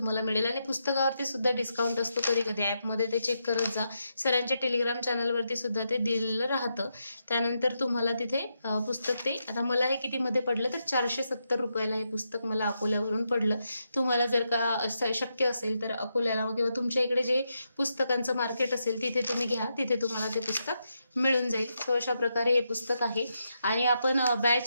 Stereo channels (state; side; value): inverted; both; correlation -0.83